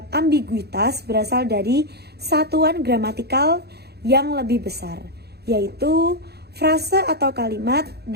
ambiguitas berasal dari satuan gramatikal yang lebih besar, yaitu frase atau kalimat,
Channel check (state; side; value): late; left; 0.47 ms